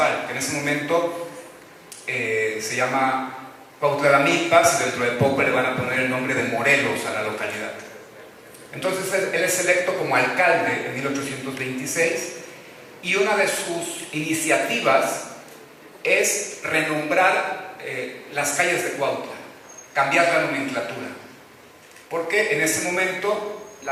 que en ese momento se llama Cuautla de Amilpas, y dentro de poco le van a poner el nombre de Morelos a la localidad. Entonces él es electo como alcalde en 1826, y una de sus iniciativas es renombrar las calles de Cuautla, cambiar la nomenclatura, porque en ese momento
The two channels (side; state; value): both; identical; correlation 1.00